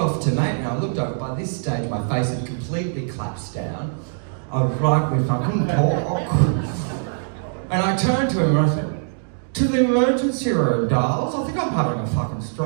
to, mate? And I looked over. By this stage, my face had completely collapsed down. I was like this, I couldn't talk. And I turned to him and I said, to the emergency room, darls. I think I'm having a fucking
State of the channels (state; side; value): silent; left; digital silence